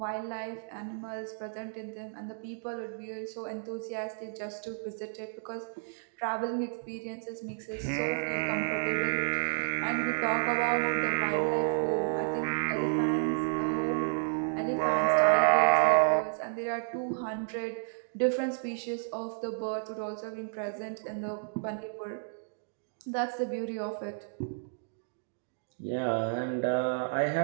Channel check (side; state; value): left; silent; digital silence